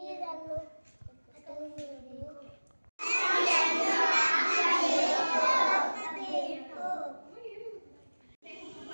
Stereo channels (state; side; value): inverted; both; correlation -1.00